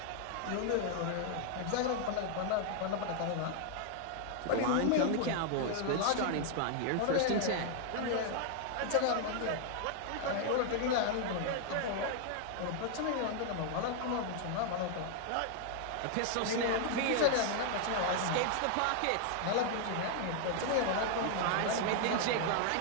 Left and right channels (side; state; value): both; different; correlation 0.00